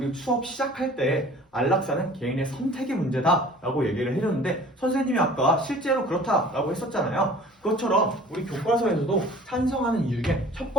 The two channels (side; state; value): both; normal; correlation 0.47